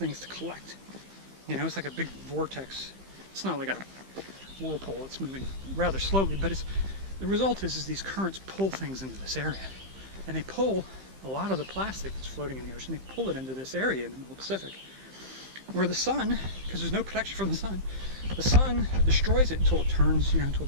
to collect. You know, it's like a big vortex. It's not like a whirlpool, it's moving rather slowly, but the result is these currents pull things into this area. And they pull a lot of the plastic that's floating in the ocean, they pull it into this area in the middle Pacific, where the sun, because there's no protection from the sun destroys it until it turns, you know, until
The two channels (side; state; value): left; late; 15 ms